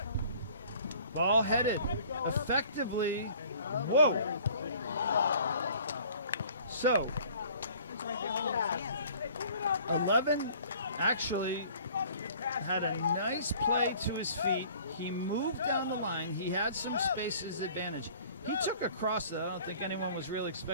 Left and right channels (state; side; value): inverted; both; correlation -0.51